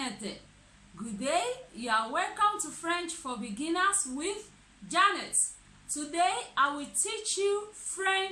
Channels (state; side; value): identical; both; correlation 1.00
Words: Good day, you are welcome to French for Beginners with Janet. Today I will teach you